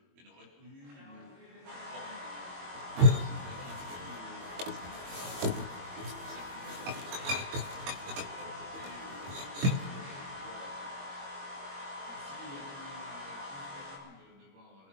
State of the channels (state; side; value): late; left; 21 ms